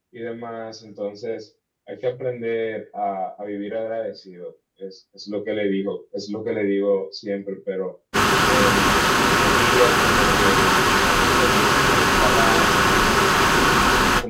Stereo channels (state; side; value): identical; both; correlation 1.00